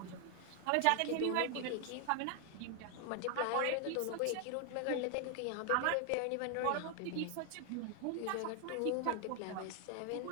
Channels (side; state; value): both; different; correlation 0.00